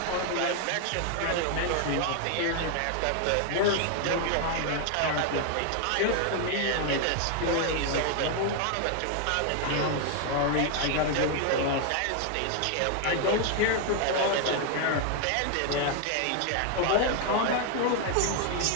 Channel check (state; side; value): different; both; correlation 0.00